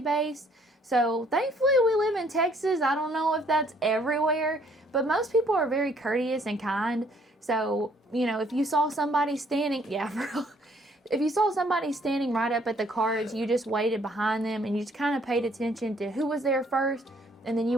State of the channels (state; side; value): normal; both; correlation 0.64